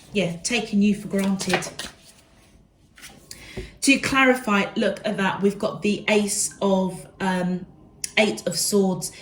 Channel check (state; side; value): identical; both; correlation 1.00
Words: you for granted. To clarify, look at that. We've got the Eight of Swords.